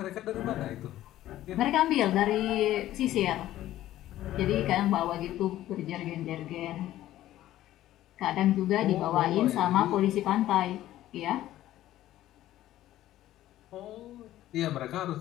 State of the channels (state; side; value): quieter; right; 14.0 dB